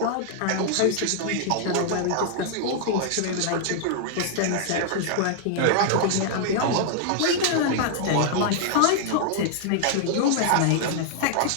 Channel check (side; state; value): both; different; correlation -0.01